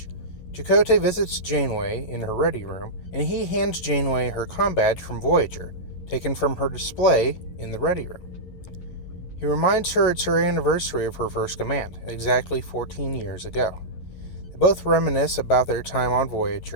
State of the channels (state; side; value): late; right; 11 ms